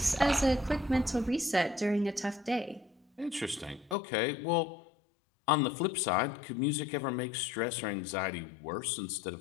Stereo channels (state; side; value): drops out; right; at 4.0 s